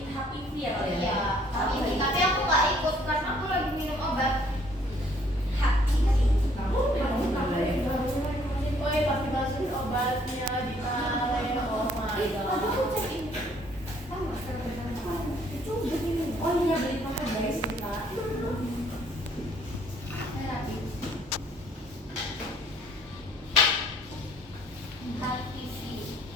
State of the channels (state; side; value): normal; both; correlation 0.62